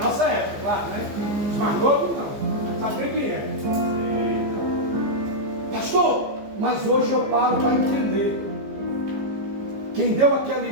época, claro, né? Os mais novos não, sabe nem quem é. Pastor, mas hoje eu paro para entender. Quem deu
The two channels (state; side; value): late; left; 15 ms